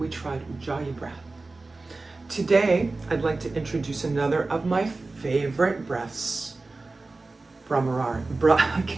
we tried Ujjayi breath. Today, I'd like to introduce another of my favorite breaths,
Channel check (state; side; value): quieter; left; 3.4 dB